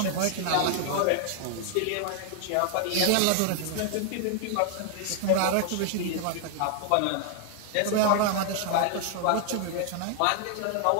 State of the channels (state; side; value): different; both; correlation 0.00